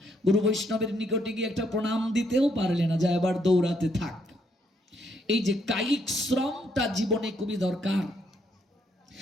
গুরু বৈষ্ণবের নিকটে গিয়ে একটা প্রণাম দিতেও পারলে না, যা এবার দৌড়াতে থাক। এই যে কায়িক শ্রমটা জীবনে খুবই দরকার।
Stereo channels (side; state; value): both; normal; correlation 0.73